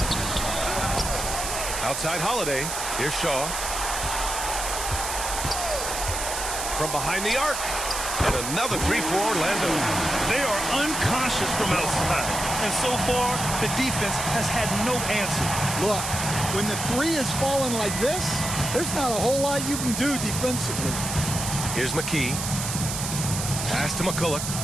Outside Holiday. Here's Shaw. From behind the arc. And another three for Orlando. They are unconscious from outside. And so far, the defense has had no answer. Look, when the three is falling like this, there's not a whole lot you can do defensively. Here's McKee. Pass to McCulloch.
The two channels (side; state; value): right; noise; hiss, 4 dB below the sound